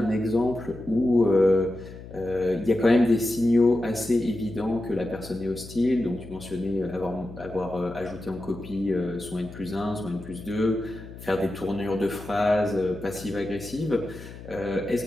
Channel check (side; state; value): left; noise; hum, 14 dB below the sound